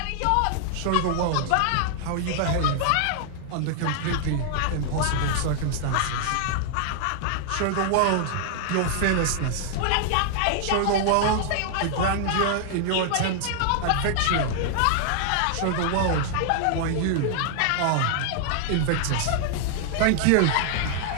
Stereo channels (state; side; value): different; both; correlation 0.00